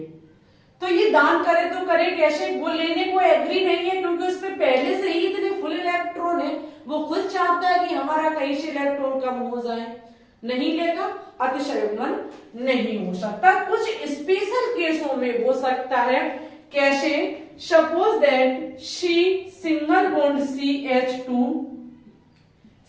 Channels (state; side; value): identical; both; correlation 1.00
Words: तो ये दान करे तो करे कैसे? वो लेने को एग्री नहीं है, क्योंकि उस पे पहले से ही इतने फुल इलेक्ट्रॉन है, वो खुद चाहता है कि हमारा कहीं से इलेक्ट्रॉन कम हो जाए। नहीं लेगा, अतिशयुग्मन नहीं हो सकता। कुछ स्पेशल केसों में हो सकता है। कैसे? Suppose that C single bond CH2